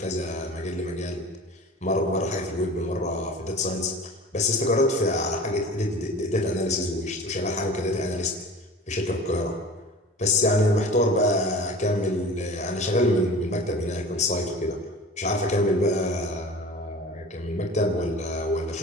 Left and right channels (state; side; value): normal; both; correlation 0.39